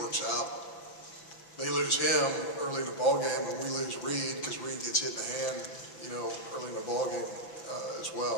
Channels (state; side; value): late; right; 5.9 ms